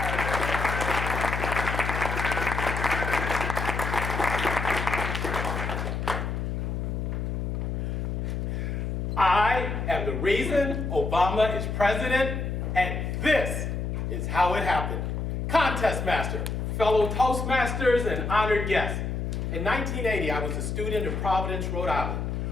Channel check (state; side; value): noise; left; hum, 2 dB below the sound